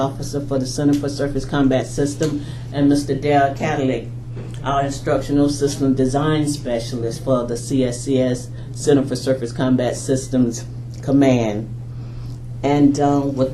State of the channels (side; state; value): both; identical; correlation 1.00